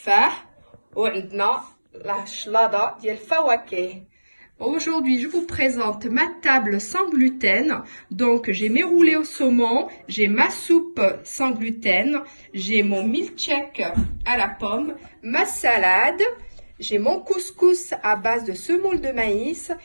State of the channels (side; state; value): both; inverted; correlation -1.00